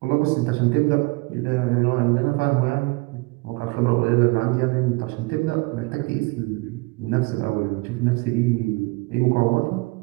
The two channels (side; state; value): left; quieter; 25.5 dB